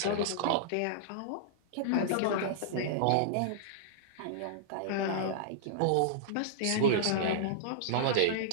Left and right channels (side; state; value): both; different; correlation -0.02